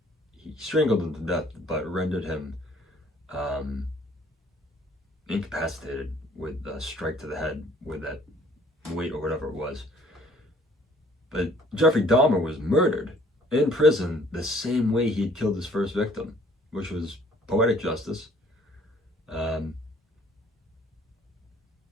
he strangled him to death, but rendered him incapacitated with a strike to the head with that weight or whatever it was. But Jeffrey Dahmer was murdered in prison the same way he had killed his first victim, which was poetic justice.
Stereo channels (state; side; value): normal; both; correlation 0.58